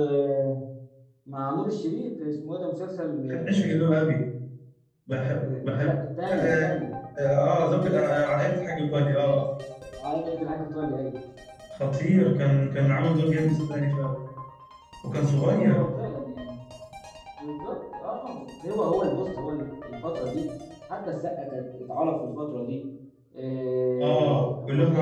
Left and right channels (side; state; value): both; identical; correlation 1.00